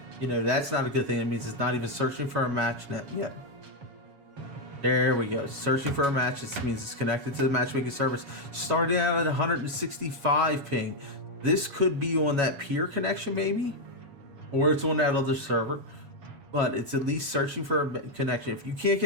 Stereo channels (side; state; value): left; late; 7.1 ms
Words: that's not a good thing. It means it's not even searching for a match net yet. There we go. Searching for a match. This means it's connected to the matchmaking service. Starting out at 165 ping. This could be on that peer connection maybe, or it's on that other server. But it's at least searching for a connection. If you can't